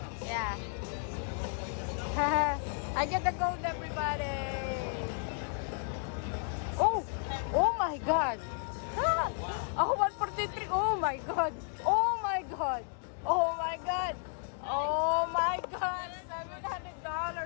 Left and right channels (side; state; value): right; silent; 56 dB below the other